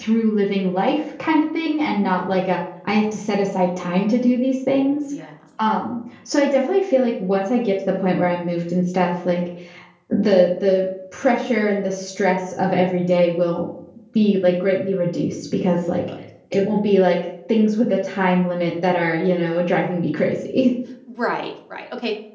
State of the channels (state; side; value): identical; both; correlation 1.00